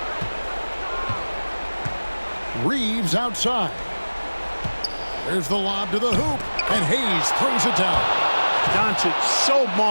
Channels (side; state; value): both; inverted; correlation -1.00